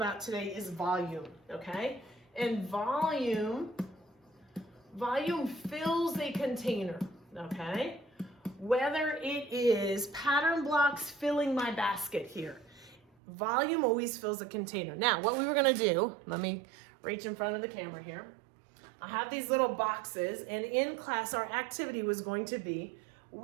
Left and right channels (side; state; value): left; drops out; at 13.0 s